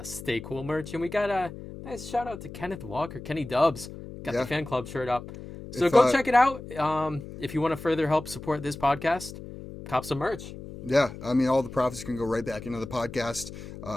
Stay Cool merch, and we got a nice shout out to Kenneth Walker, Kenny Dubs. Got the fan club shirt up. So go check it out. If you want to further help support this podcast, cop some merch. Yeah, I mean, all the profits can go right back into the podcast,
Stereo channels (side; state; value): left; noise; hum, 12 dB below the sound